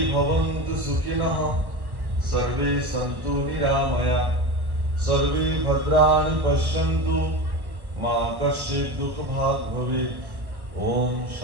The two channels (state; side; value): late; left; 1.1 ms